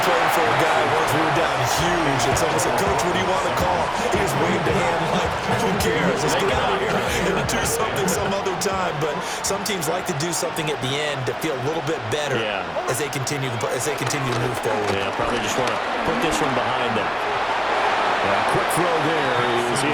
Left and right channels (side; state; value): both; identical; correlation 1.00